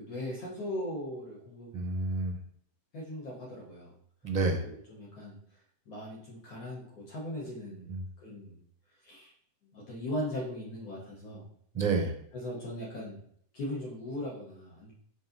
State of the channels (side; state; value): right; late; 7.7 ms